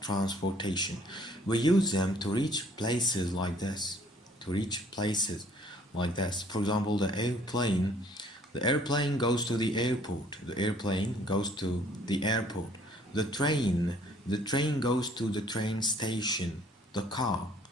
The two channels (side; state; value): both; normal; correlation 0.59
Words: transportation. We use them to reach places like this. For example, the airplane goes to the airport. The airplane goes to the airport. The train goes to the train station. The car